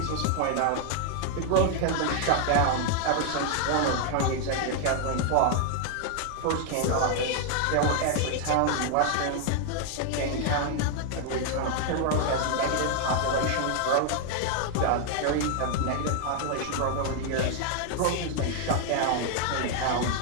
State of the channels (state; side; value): different; both; correlation 0.00